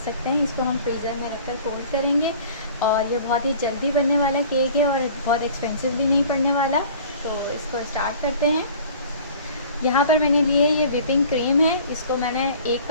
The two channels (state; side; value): inverted; both; correlation -0.46